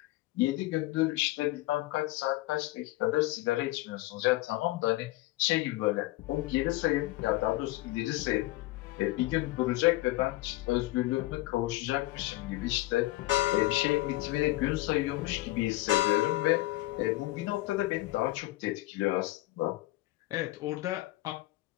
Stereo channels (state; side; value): quieter; right; 18.5 dB